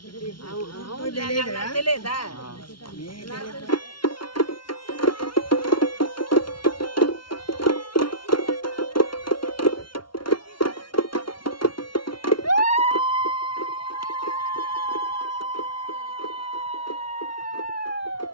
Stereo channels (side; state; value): right; late; 0.73 ms